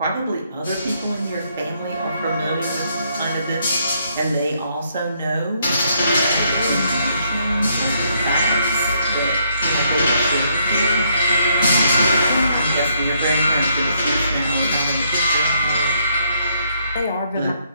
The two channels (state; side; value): inverted; both; correlation -0.72